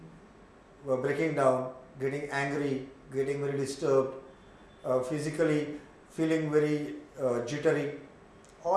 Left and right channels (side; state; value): both; identical; correlation 1.00